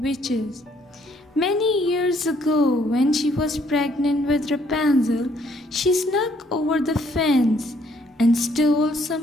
Many years ago, when she was pregnant with Rapunzel, she snuck over the fence and stole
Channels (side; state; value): both; normal; correlation 0.66